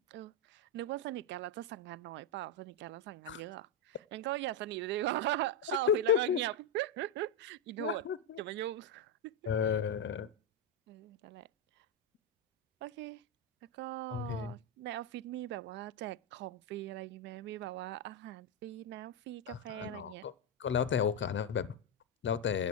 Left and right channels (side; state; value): both; normal; correlation 0.04